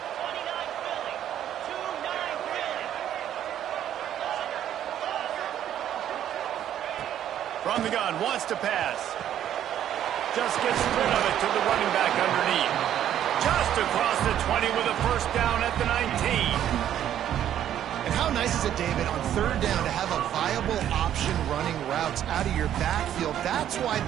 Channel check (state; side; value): quieter; left; 10.8 dB